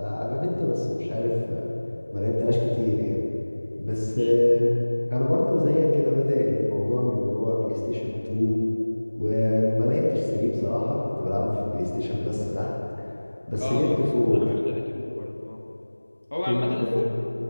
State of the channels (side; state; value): both; inverted; correlation -1.00